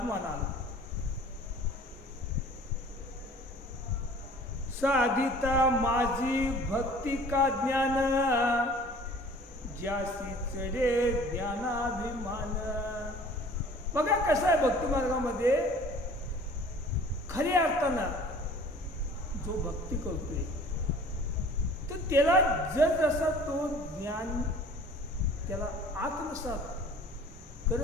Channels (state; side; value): normal; both; correlation 0.48